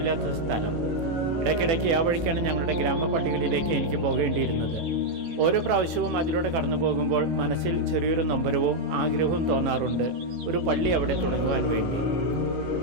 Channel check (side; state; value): left; late; 18 ms